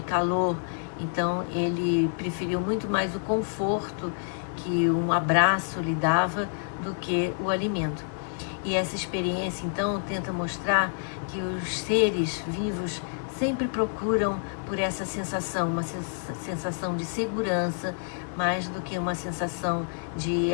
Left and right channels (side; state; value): right; silent; digital silence